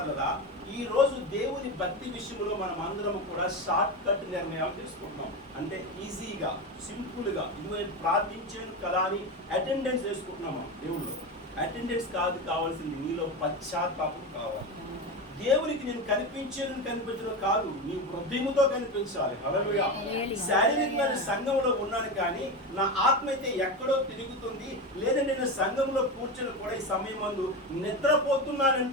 ఈ రోజు దేవుని భక్తి విషయంలో మనం అందరం కూడా షార్ట్ కట్ నిర్ణయాలు తీసుకుంటున్నాం. అంటే ఈజీగా, సింపుల్గా, ఇది నేను ప్రార్థించాను కదా అని అటెండెన్స్ వేసుకుంటున్నాం. మనం దేవుళ్ళు అటెండెన్స్ కాదు కావాల్సింది, నీలో పశ్చాత్తాపం కావాలి. దేవునికి నేను కనిపించడం కాదు, నీ హృదయముతో కనిపించాలి. హల్లెలూయా. శారీరకమైన సంఘంలో ఉన్నాను కానీ నా ఆత్మ అయితే ఎక్కడో తిరుగుతుంది. లేదంటే నేను సంఘంలో కూర్చొని కూడా ఈ సమయం ముందు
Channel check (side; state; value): both; normal; correlation 0.20